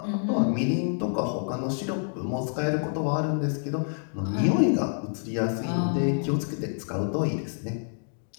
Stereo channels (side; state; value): right; silent; digital silence